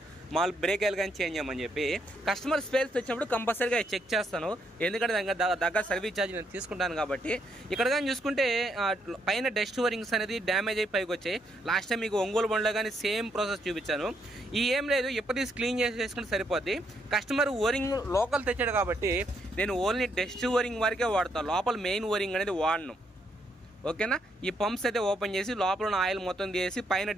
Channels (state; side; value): normal; both; correlation 0.75